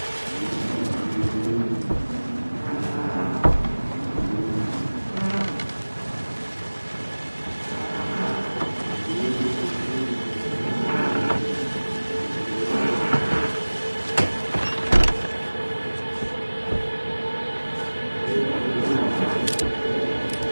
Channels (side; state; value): both; inverted; correlation -1.00